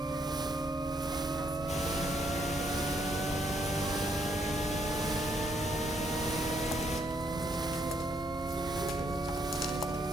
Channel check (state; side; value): normal; both; correlation 0.72